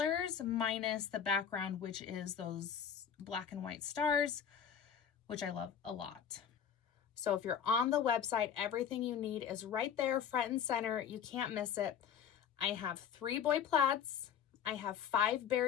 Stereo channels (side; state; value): right; quieter; 8.2 dB